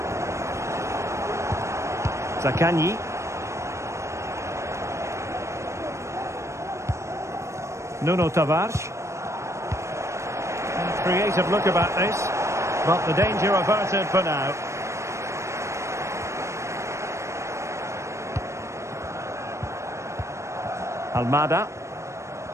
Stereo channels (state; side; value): late; left; 0.14 ms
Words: Zaccagni. Nuno Tavares. Creative look about this, but the danger averted for now. Almada.